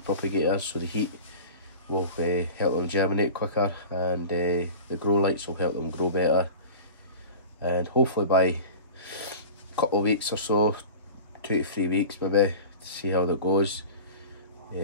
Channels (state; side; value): inverted; both; correlation -0.36